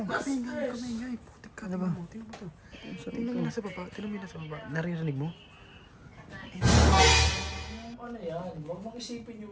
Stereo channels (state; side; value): identical; both; correlation 1.00